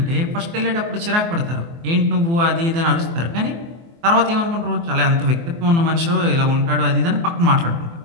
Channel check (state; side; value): late; left; 24 ms